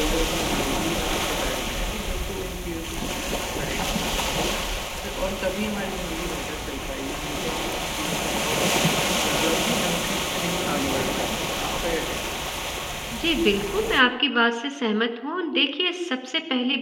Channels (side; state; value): both; identical; correlation 1.00